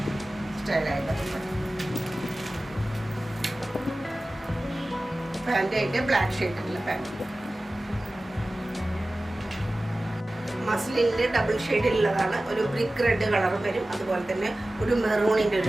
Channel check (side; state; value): both; normal; correlation 0.96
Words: സ്റ്റൈലായിട്ട് ദുപ്പട്ട. പാൻറ് ആയിട്ട് ബ്ലാക്ക് ഷെയ്ഡുള്ള പാൻറ്. മസ്ലിനിൽ ഡബിൾ ഷെയ്ഡിലുള്ളതാണ്. ഒരു ബ്രിക്ക് റെഡ് കളറും വരും. അതുപോലെ തന്നെ ഒരു മെറൂണിൻ്റെ